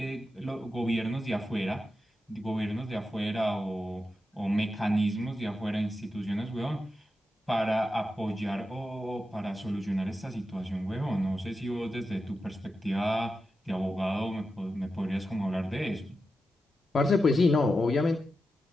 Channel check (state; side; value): normal; both; correlation 0.90